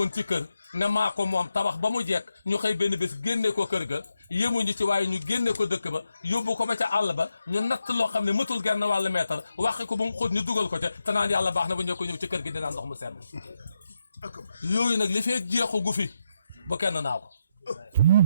ci kër ne maa ko moom tabax ba mu jekk ñu xëy benn bés génne ko kër ga yémuñu ci waaye ñu génne ko dëkk ba yóbbu ko ba ca àll ba ñu natt loo xam ne mëtul genn wàllu meetar waxi ko ba mu xóot ñu dugal ko ca te naan yàlla baax na ba ñëw ko ñëw ci kër gi dinaan ndox mu sedd yooyu nag li feek jeexu gu fi bu kenn naa ko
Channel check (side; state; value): both; inverted; correlation -0.85